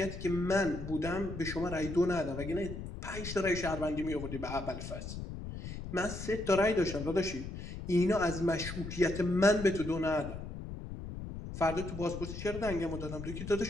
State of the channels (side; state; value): left; noise; rumble, 8 dB below the sound